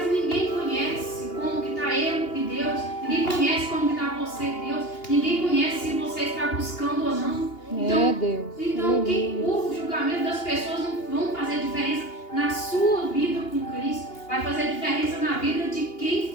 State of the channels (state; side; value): late; right; 2.8 ms